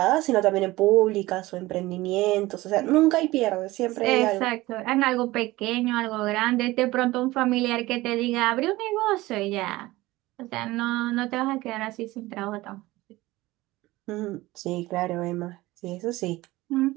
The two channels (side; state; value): left; quieter; 18.9 dB